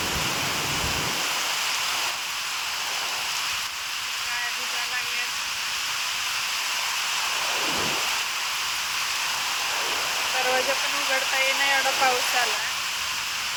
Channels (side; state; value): both; identical; correlation 1.00